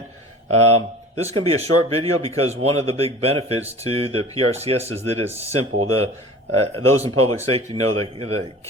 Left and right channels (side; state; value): both; normal; correlation 0.41